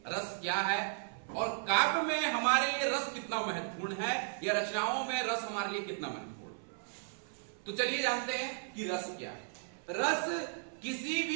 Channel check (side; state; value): left; silent; 54 dB below the other